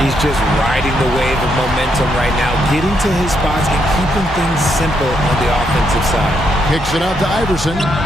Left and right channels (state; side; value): normal; both; correlation 0.78